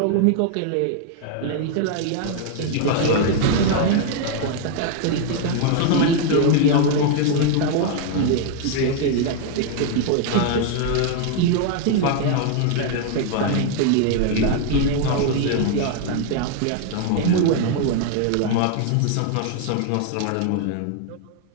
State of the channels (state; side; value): different; both; correlation 0.00